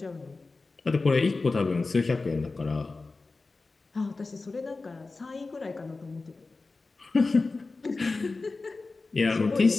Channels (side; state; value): right; quieter; 3.7 dB